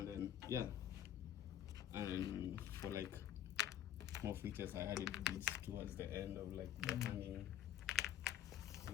then yeah, and for like more features, I added these towards the end of like the hanging,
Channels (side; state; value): right; quieter; 10.8 dB